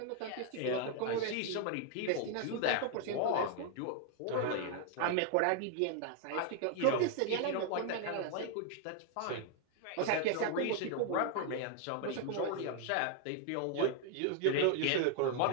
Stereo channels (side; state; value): both; different; correlation 0.00